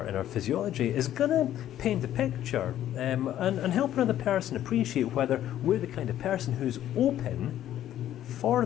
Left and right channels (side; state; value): right; quieter; 12.0 dB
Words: in our physiology is going to paint a picture and help another person appreciate whether we're the kind of person who's open